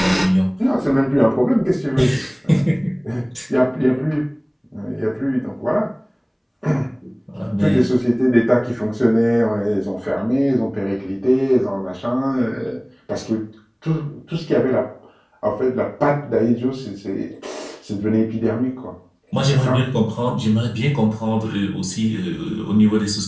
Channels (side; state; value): both; identical; correlation 1.00